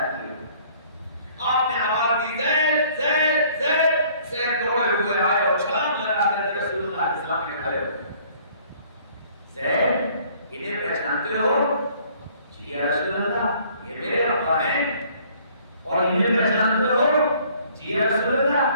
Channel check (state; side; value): inverted; both; correlation -0.58